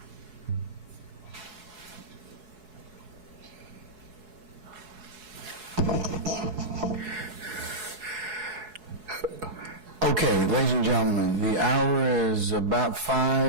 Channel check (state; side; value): late; left; 4.7 ms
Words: Okay, ladies and gentlemen, the hour is about